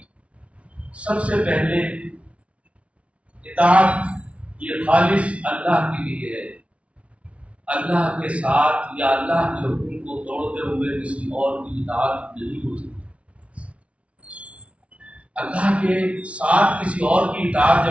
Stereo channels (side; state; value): left; late; 0.063 ms